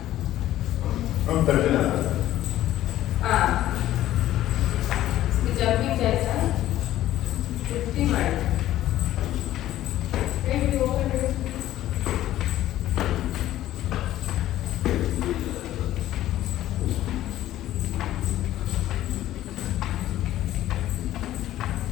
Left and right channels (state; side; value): quieter; right; 13.7 dB